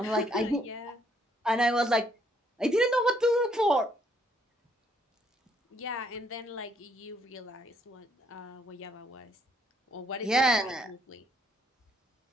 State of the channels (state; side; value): normal; both; correlation 0.69